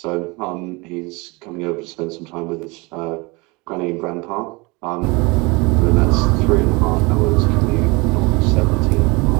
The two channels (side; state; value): left; quieter; 26.3 dB